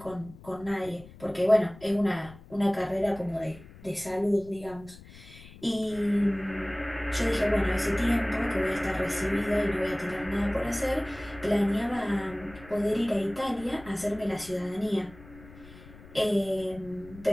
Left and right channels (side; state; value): left; noise; rumble, 19 dB below the sound